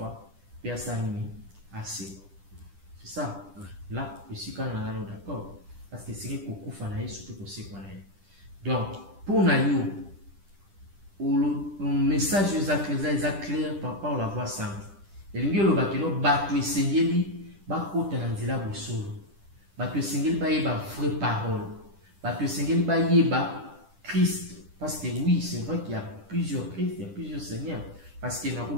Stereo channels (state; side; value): late; left; 10 ms